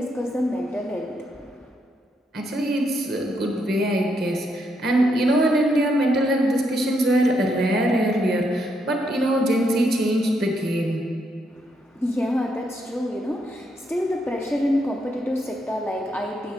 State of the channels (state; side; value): normal; both; correlation 0.77